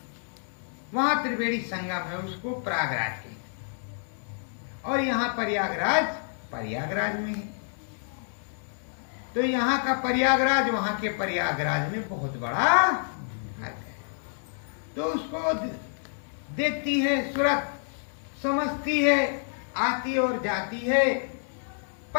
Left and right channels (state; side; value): silent; right; digital silence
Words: वहां त्रिवेणी संगम है, उसको प्रयागराज कहते हैं। और यहाँ प्रयागराज में है। तो यहाँ का प्रयागराज वहां के प्रयागराज में बहुत बड़ा फर्क है। तो उसको देखती है सूरत, समझती है, आती और जाती है,